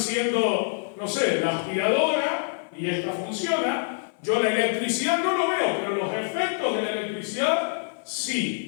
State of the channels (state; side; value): silent; right; 60 dB below the other